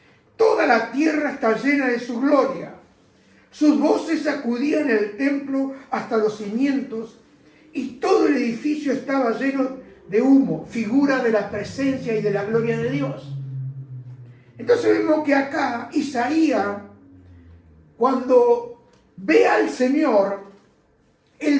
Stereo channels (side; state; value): both; identical; correlation 1.00